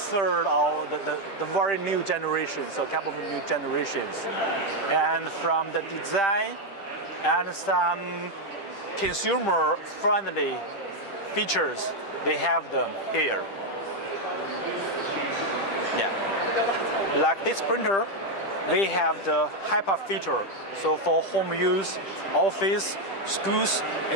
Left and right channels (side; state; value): right; late; 10 ms